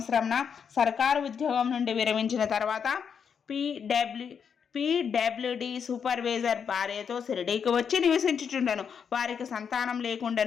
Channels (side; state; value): right; quieter; 7.0 dB